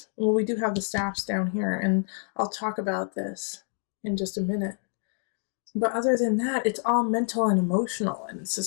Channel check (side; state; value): right; silent; 60 dB below the other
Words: Well, we do have the staffs down here, and I'll talk about this in just a minute. But other than that, it's all mental and emotional, and it's